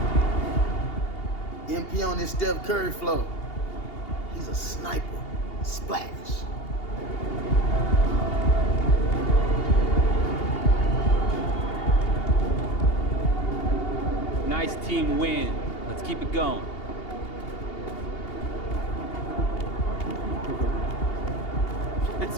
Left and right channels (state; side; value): late; right; 2.8 ms